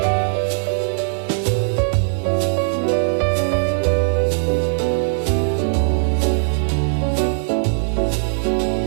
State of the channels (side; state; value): left; silent; digital silence